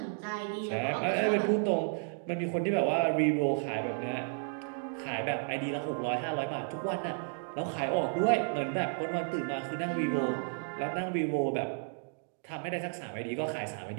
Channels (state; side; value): silent; left; 56 dB below the other